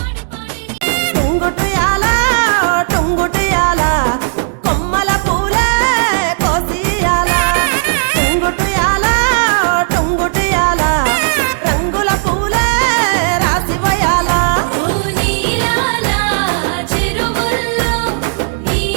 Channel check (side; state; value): left; silent; digital silence